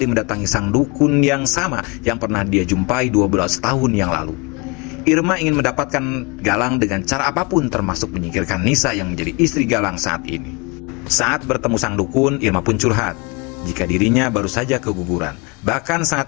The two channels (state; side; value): quieter; right; 28.7 dB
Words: mendatangi sang dukun yang sama yang pernah dia jumpai 12 tahun yang lalu. Irma ingin mendapatkan Galang dengan cara apapun termasuk menyingkirkan Nisa yang menjadi istri Galang saat ini. Saat bertemu sang dukun, Irma pun curhat jika dirinya baru saja keguguran. Bahkan saat